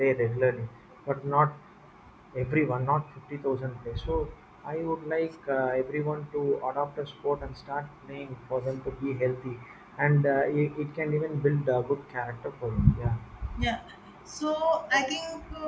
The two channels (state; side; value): identical; both; correlation 1.00